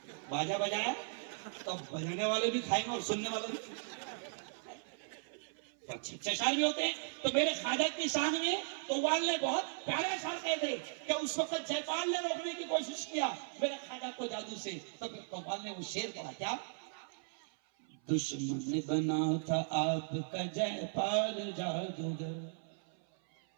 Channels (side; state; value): left; silent; 53 dB below the other